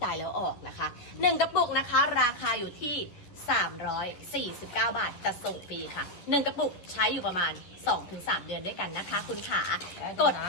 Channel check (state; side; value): late; right; 11 ms